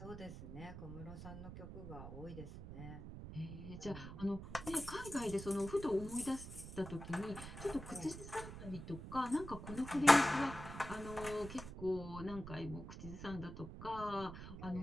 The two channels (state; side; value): noise; right; rumble, 10 dB below the sound